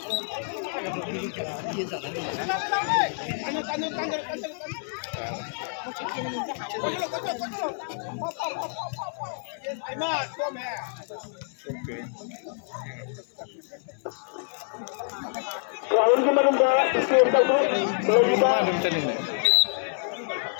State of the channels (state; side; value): silent; right; 59 dB below the other